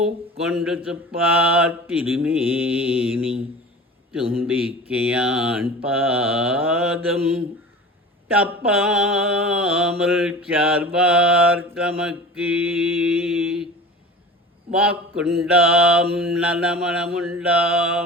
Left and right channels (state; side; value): normal; both; correlation 0.37